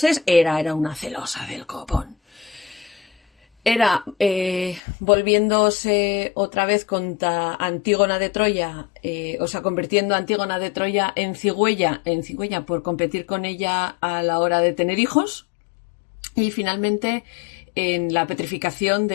Hera era una celosa del copón. Era volviéndose otra vez contra Antígona de Troya, convirtiendo a Antígona de Troya en cigüeña por competir con ella a la hora de tener hijos, y finalmente en la petrificación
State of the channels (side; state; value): right; drops out; at 4.8 s